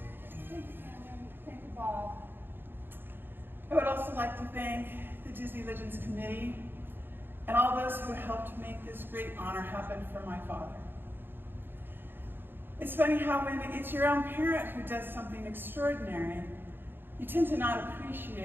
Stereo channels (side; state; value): left; late; 0.10 ms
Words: I would also like to thank the Disney Legends Committee and all those who helped make this great honor happen for my father. It's funny how when it's your own parent who does something extraordinary, you tend to not